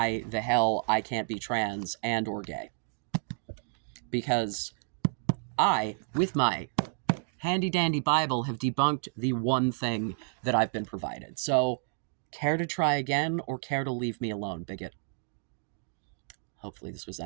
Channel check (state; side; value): silent; left; digital silence